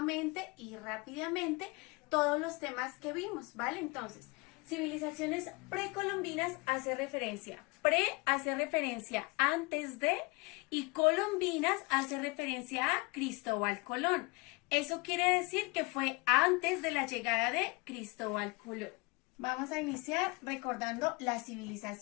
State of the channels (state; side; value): quieter; right; 26.2 dB